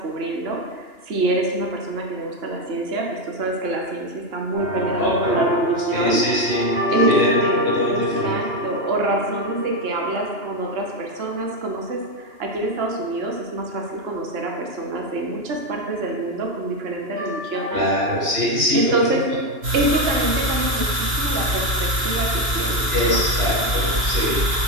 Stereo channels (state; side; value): late; left; 2.9 ms